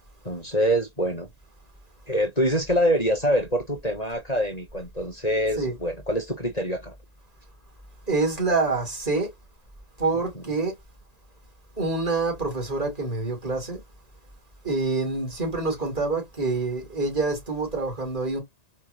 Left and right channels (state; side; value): late; right; 1.9 ms